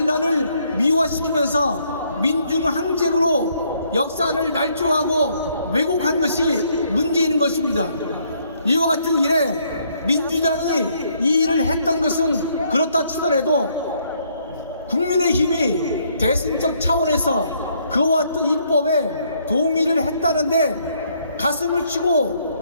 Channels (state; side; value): inverted; both; correlation -0.69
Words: 미화시키면서 민중 항쟁으로 역사를 날조하고 왜곡한 것이 문제인 것입니다. 이와 같은 일에 민주당이 이 일을 했던 것은 그렇다 치더라도 국민의힘이 대승적 차원에서 그와 같은 입법에 동의를 했다는데 가슴을